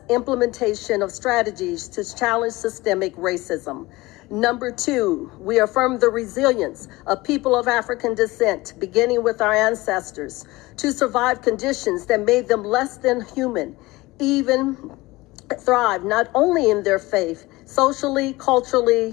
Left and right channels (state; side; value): quieter; right; 20.5 dB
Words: implementation of strategies to challenge systemic racism. Number 2, we affirm the resilience of people of African descent, beginning with our ancestors, to survive conditions that made them less than human, even thrive not only in their faith, socially,